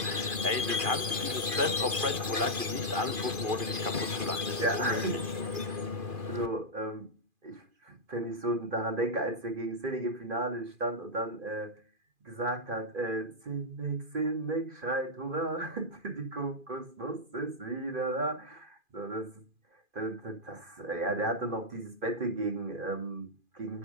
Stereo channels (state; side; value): late; left; 2.4 ms